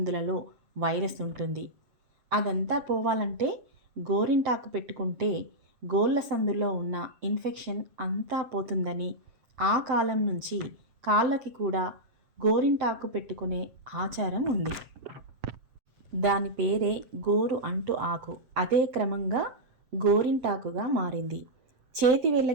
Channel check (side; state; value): left; late; 7.8 ms